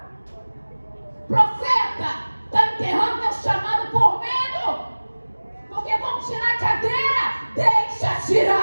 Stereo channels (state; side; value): inverted; both; correlation -1.00